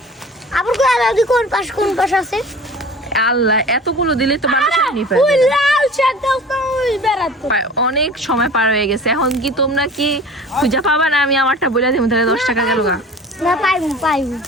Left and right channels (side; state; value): both; normal; correlation 0.41